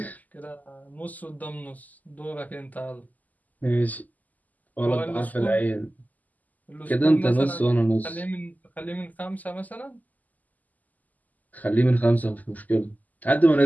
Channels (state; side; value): late; right; 0.080 ms